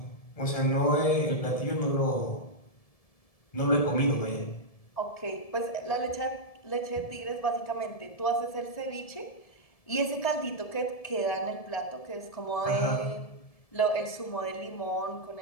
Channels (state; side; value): late; right; 1.7 ms